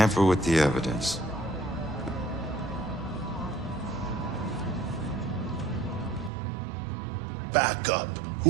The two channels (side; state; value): left; drops out; at 6.3 s